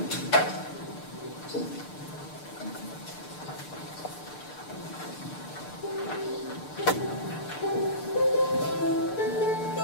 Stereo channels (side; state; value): right; late; 6.7 ms